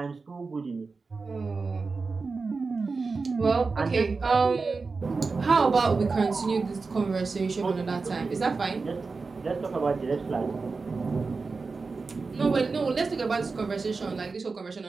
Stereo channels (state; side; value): quieter; left; 4.3 dB